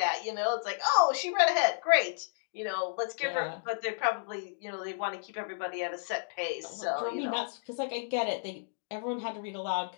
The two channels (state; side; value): silent; right; digital silence